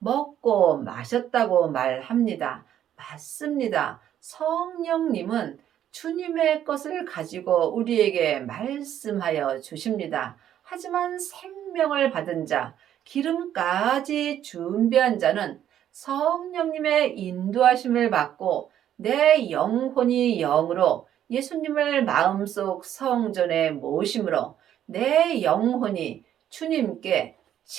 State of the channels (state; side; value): quieter; left; 10.7 dB